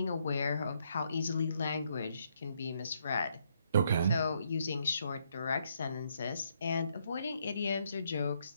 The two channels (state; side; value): inverted; both; correlation -0.74